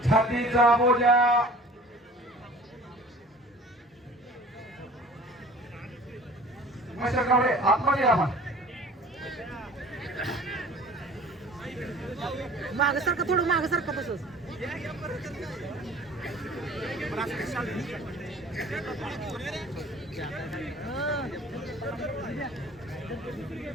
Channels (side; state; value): both; normal; correlation 0.46